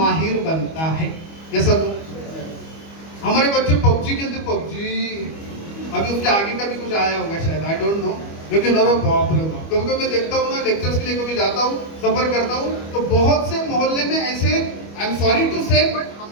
बनता है। ये सब हमारे बच्चे पबजी खेलते, पबजी अभी उसके आगे का भी कुछ आया होगा शायद, आई डोंट नो, लेकिन अरे बाप रे बाप, कभी कभी मैं देखता हूँ ना, लेक्चर्स के लिए कभी जाता हूँ, सफर करता हूँ, तो बहुत से मोहल्ले में ऐसे, आई एम सॉरी टू से, बट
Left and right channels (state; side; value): late; right; 25 ms